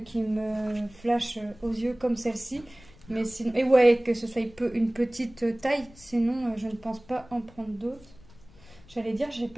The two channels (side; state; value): left; noise; rumble, 24 dB below the sound